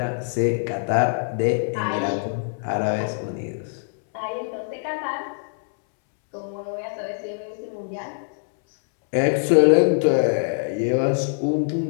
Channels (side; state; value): right; silent; 63 dB below the other